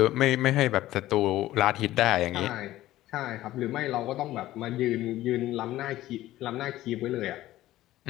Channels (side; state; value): right; quieter; 15.2 dB